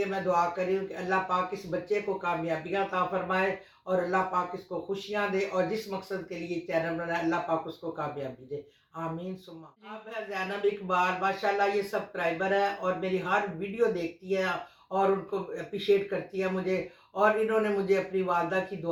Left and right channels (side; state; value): both; identical; correlation 1.00